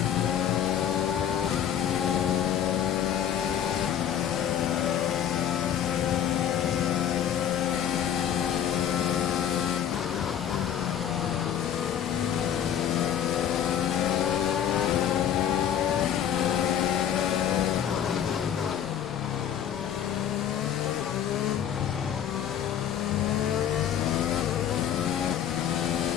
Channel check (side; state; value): right; quieter; 9.6 dB